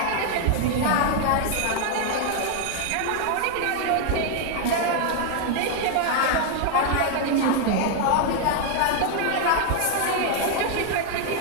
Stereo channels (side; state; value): both; different; correlation 0.00